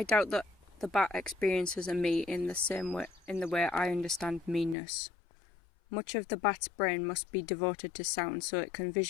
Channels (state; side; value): drops out; right; at 4.8 s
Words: doubt that the bat experiences a me in the way I understand meanness. Much of the bat's brain must be devoted to sound so it can